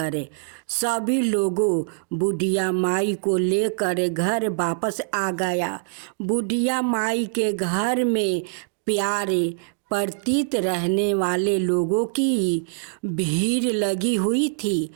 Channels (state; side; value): silent; left; digital silence